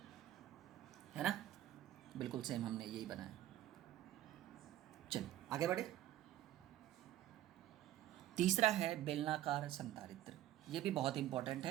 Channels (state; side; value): quieter; left; 13.5 dB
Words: है ना? बिल्कुल सेम हमने यही बनाया। चलिए आगे बढ़े। तीसरा है बेलनाकार संधारित्र। ये भी बहुत इंपॉर्टेंट